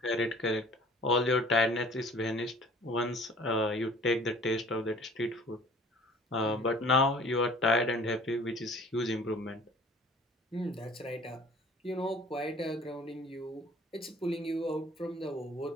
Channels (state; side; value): normal; both; correlation 0.50